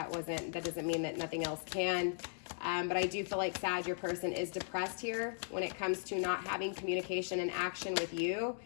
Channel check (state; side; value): silent; right; 53 dB below the other